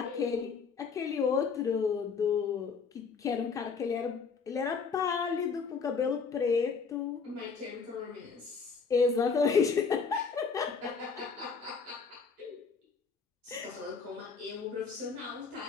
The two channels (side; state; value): right; quieter; 5.4 dB